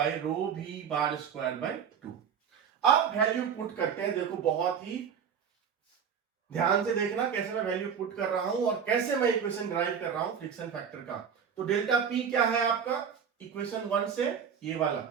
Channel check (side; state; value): left; quieter; 7.4 dB